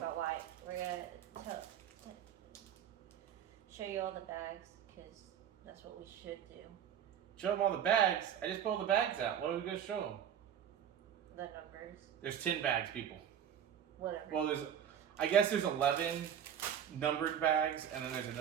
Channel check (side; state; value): left; quieter; 9.2 dB